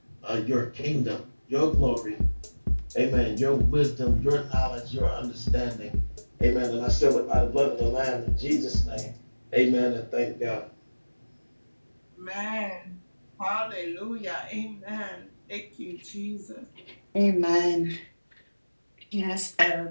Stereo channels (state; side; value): inverted; both; correlation -1.00